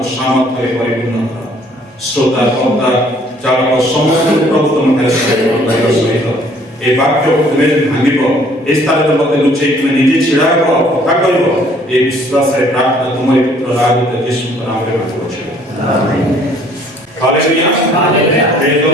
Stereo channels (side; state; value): both; normal; correlation 0.59